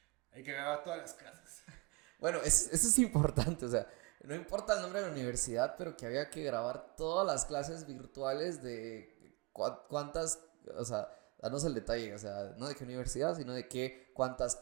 Hay que grabar todas las clases. Bueno, eso es importante, o sea, no importa el nombre de la universidad, pero que había que grabar todas las clases virtuales de cuántas, o sea, danos el detalle, o sea, no de qué universidad, sino de cuántas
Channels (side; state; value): left; quieter; 26.3 dB